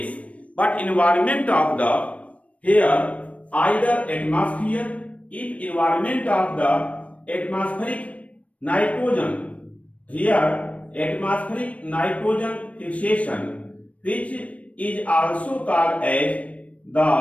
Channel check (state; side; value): late; right; 0.065 ms